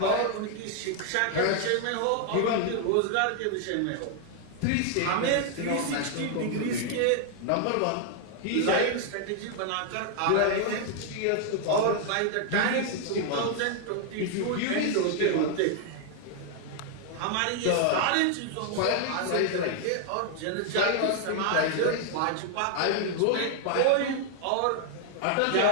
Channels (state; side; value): different; both; correlation 0.00